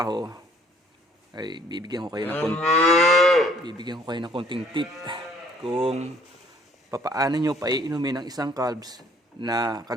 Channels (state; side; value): normal; both; correlation 0.59